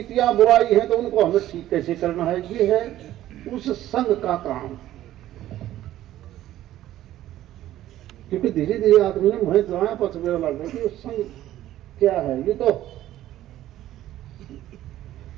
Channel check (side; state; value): left; quieter; 13.6 dB